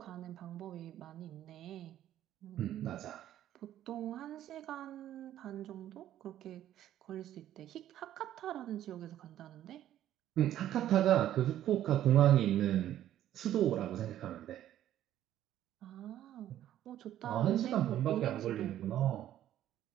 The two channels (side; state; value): left; quieter; 12.1 dB